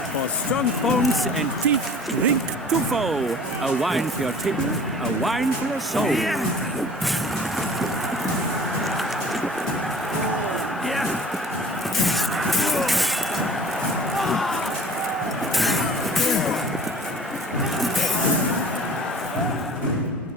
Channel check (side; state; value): both; normal; correlation 0.45